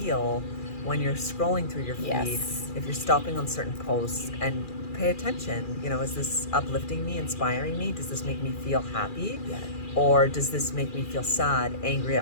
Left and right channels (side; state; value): right; late; 2.4 ms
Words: when you're scrolling through your feed. Yes. If you're stopping on certain posts, and pay attention, you know, is this uplifting me, inspiring me? Does this make me feel happy? Yeah. Or does this make me feel sad, angry